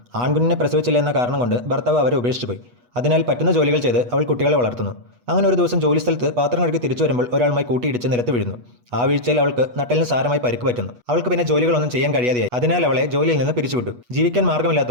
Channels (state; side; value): late; left; 8.2 ms